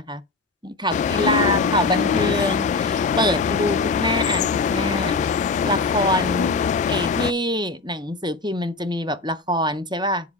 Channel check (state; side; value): quieter; right; 3.5 dB